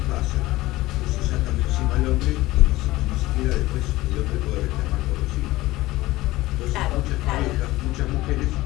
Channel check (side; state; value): right; quieter; 18.1 dB